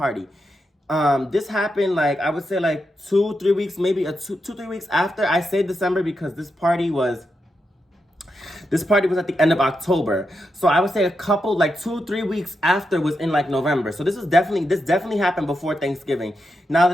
This happened, like, I would say, like 2-3 weeks, maybe 2-3 weeks after. I say December because this party was at the end of October. So I would say a couple, like 2-3 weeks after was in like November. So this definitely happened before Thanksgiving. Now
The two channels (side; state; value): both; normal; correlation 0.86